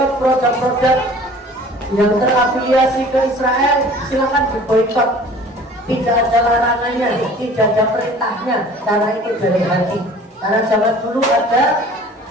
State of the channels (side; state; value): both; normal; correlation 0.47